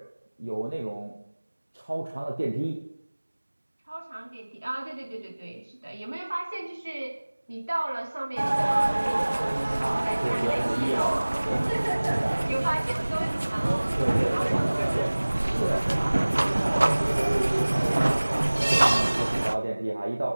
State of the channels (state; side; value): inverted; both; correlation -1.00